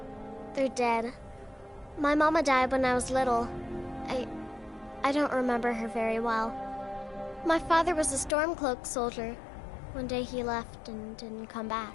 They're dead. My mama died when I was little. I don't remember her very well. My father was a Stormcloak soldier. One day he left and didn't come back.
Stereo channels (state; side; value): drops out; right; at 8.3 s